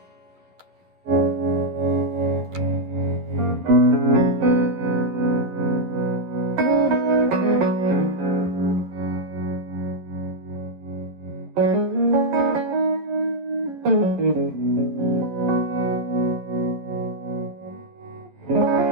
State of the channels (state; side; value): late; left; 11 ms